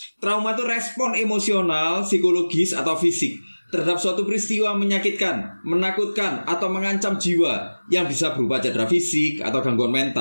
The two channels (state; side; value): inverted; both; correlation -1.00